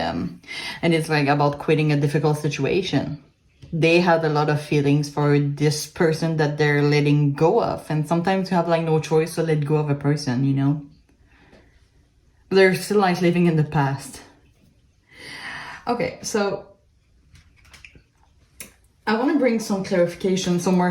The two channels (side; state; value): both; identical; correlation 1.00